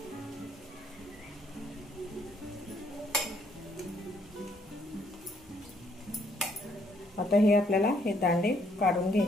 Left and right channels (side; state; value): both; normal; correlation 0.69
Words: आता हे आपल्याला हे दांडे काढून